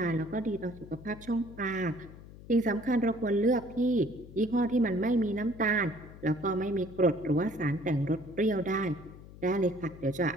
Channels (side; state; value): left; noise; hum, 17 dB below the sound